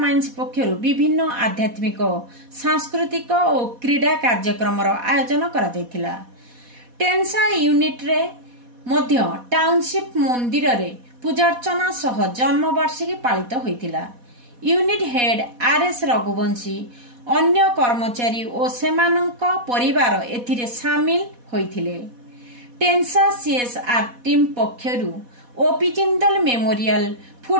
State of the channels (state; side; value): late; left; 4.1 ms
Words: पक्षरु विभिन्न आध्यात्मिक सांस्कृतिक और क्रीड़ा कार्यक्रम आयोजन करा जायतिला। टेंसा यूनिट रे मध्य टाउनशिप मंदिर रे पूजार्चना सह जन्मवार्षिकी पालित होइतिला। यूनिट हेड आरएस रघुवंशी अन्य कर्मचारी और सेमानंक परिवार एथिरे शामिल होइथिले। टेंसा सीएसआर टीम पक्षरु OP Jindal memorial